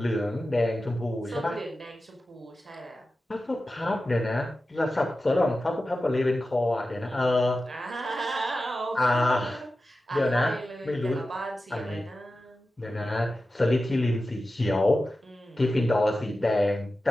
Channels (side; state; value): both; normal; correlation 0.93